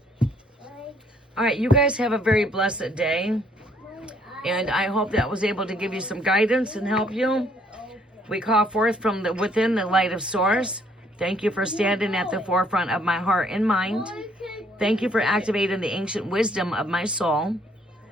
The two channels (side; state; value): both; normal; correlation 0.65